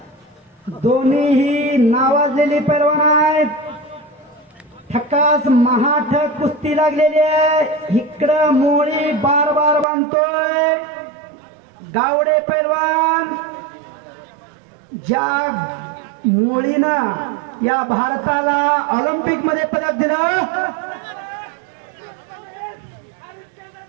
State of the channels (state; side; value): drops out; left; at 9.9 s